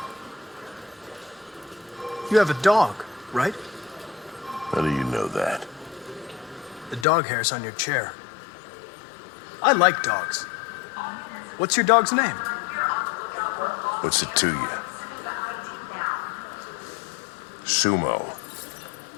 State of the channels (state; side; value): drops out; right; at 7.1 s